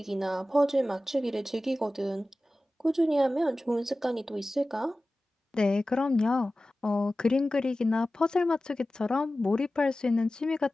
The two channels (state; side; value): normal; both; correlation 0.96